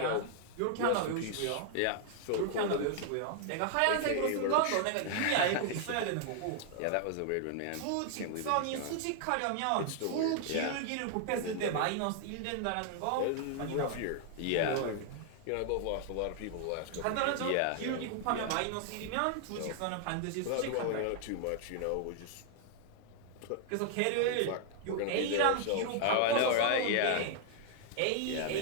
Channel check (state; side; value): different; both; correlation 0.00